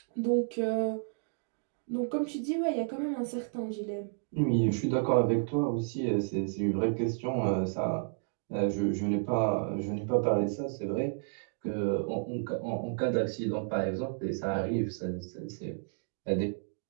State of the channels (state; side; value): silent; left; digital silence